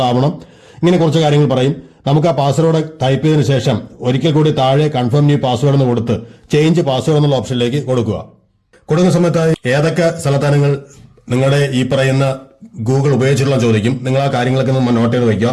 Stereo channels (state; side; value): identical; both; correlation 1.00